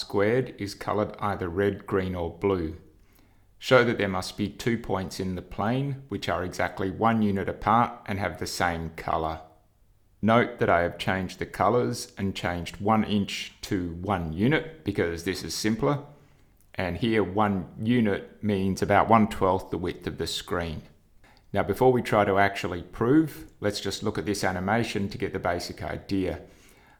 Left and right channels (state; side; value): identical; both; correlation 1.00